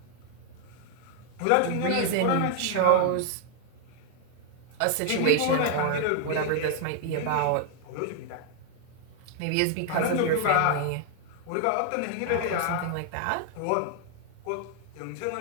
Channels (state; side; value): different; both; correlation 0.00